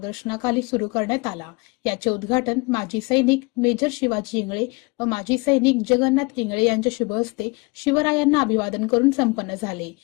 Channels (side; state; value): right; quieter; 27.3 dB